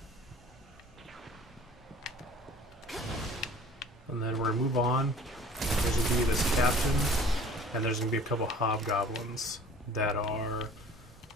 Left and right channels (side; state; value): both; normal; correlation 0.48